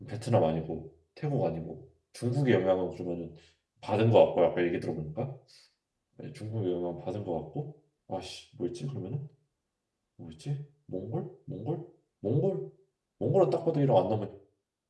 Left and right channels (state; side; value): identical; both; correlation 1.00